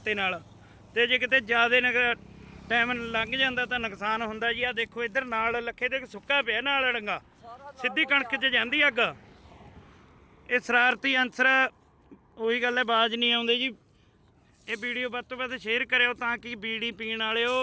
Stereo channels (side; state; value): both; identical; correlation 1.00